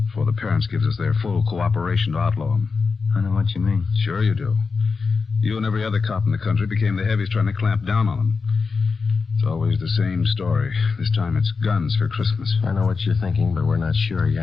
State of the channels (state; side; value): quieter; right; 4.8 dB